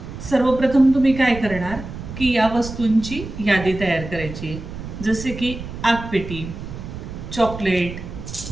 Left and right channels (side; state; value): right; noise; rumble, 10 dB below the sound